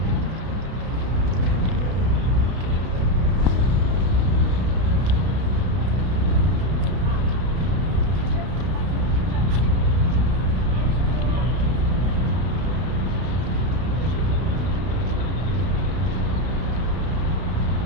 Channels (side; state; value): left; late; 32 ms